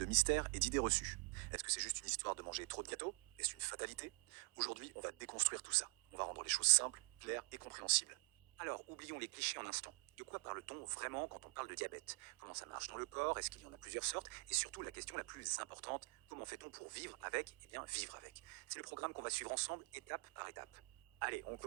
mystères et d'idées reçues. Est-ce que c'est juste une histoire de manger trop de gâteaux? Est-ce une fatalité? Aujourd'hui, on va déconstruire tout ça. On va rendre les choses simples, claires et compréhensibles. Alors, oublions les clichés un instant. De quoi parle-t-on vraiment quand on parle de diabète? Comment ça marche dans le corps? Est-ce qu'il y en a plusieurs sortes? Et surtout, la question la plus importante, comment fait-on pour vivre avec? Eh bien, vivre avec. C'est le programme qu'on va suivre ensemble, étape par étape. Allez, on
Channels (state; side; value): quieter; left; 31.5 dB